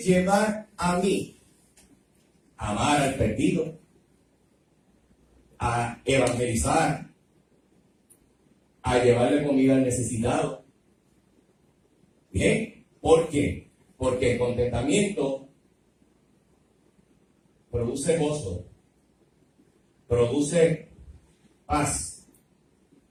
a mí a amar al perdido, a evangelizar, a llevarle comida al necesitado. ¿Bien? ¿Por qué? Porque el contentamiento produce gozo, produce paz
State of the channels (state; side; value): identical; both; correlation 1.00